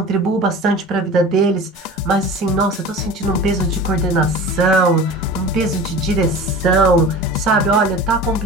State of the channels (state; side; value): normal; both; correlation 0.37